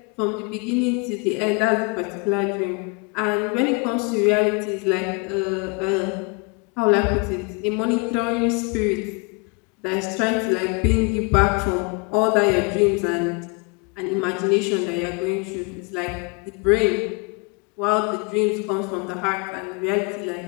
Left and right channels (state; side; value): quieter; right; 31.1 dB